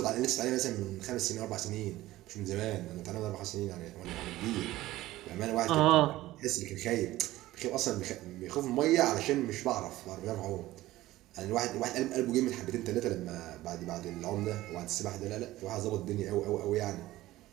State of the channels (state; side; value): quieter; left; 16.4 dB